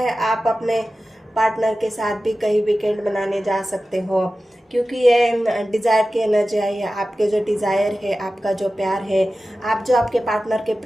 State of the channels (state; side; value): normal; both; correlation 0.95